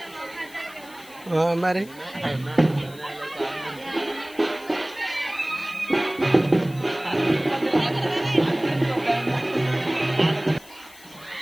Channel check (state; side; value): noise; left; hiss, 22 dB below the sound